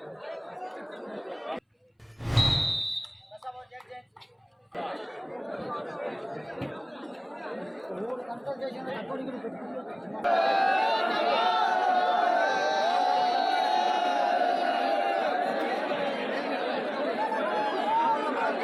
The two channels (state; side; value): identical; both; correlation 1.00